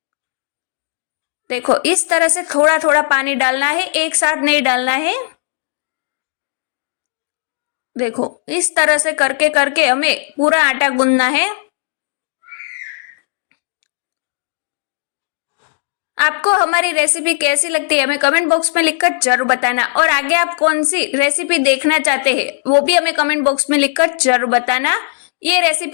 देखो इस तरह से थोड़ा थोड़ा पानी डालना है, एक साथ नहीं डालना है। देखो इस तरह से करके करके हमें पूरा आटा गूंदना है। आपको हमारी रेसिपी कैसी लगती है हमें कमेंट बॉक्स में लिखकर जरूर बताना, और आगे आप कौन सी रेसिपी देखना चाहते हैं वो भी हमें कमेंट बॉक्स में लिखकर जरूर बताना। ये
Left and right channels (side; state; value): right; silent; digital silence